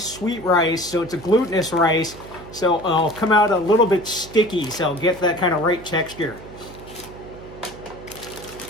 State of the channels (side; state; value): right; noise; hum, 17 dB below the sound